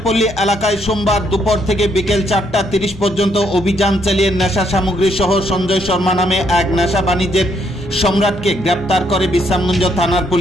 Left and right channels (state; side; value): normal; both; correlation 0.72